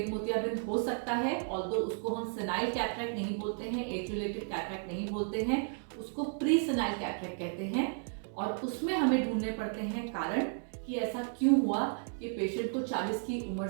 मोतियाबिंद हो सकता है। ऑल्दो उसको हम सेनाइल कैटरैक्ट नहीं बोलते हैं, एज रिलेटेड कैटरैक्ट नहीं बोलते हैं, उसको प्री सेनाइल कैटरैक्ट कहते हैं। और उसमें हमें ढूंढने पड़ते हैं कारण कि ऐसा क्यों हुआ कि पेशेंट को 40 की उम्र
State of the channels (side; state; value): left; silent; 55 dB below the other